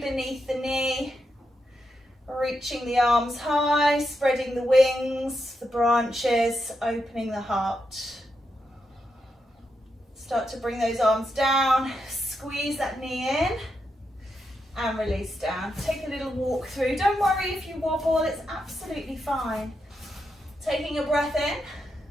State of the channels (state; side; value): normal; both; correlation 0.84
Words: the knee. Reaching the arms high, spreading the wings, the branches, opening the heart. Start to bring those arms down. Squeeze that knee in. And release down. Take a little walk through. Don't worry if you wobble, it's absolutely fine. Taking a breath in.